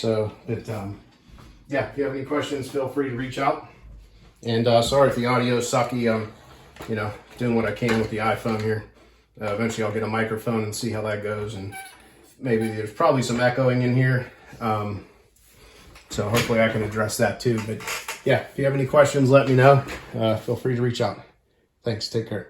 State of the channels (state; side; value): identical; both; correlation 1.00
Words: but yeah, if you have any questions, feel free to reach out. And sorry if the audio is sucky. You know, doing what I can with the iPhone here. Eventually I'll get a microphone and see how that goes, and maybe there's probably some echoing in here. So hopefully I can address that too. But yeah, if you have any questions, let me know. Feel free to reach out. Thanks. Take care.